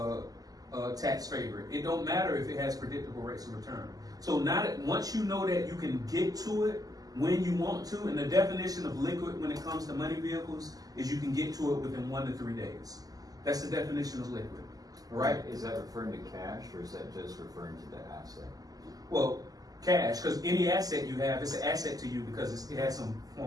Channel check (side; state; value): left; late; 0.18 ms